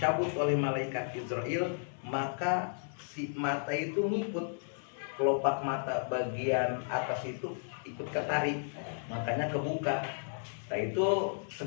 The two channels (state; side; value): silent; right; 55 dB below the other